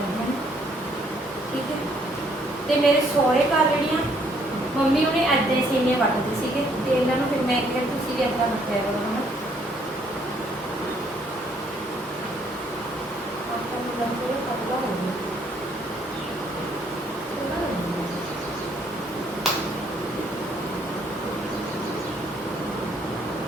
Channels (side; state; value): both; normal; correlation 0.67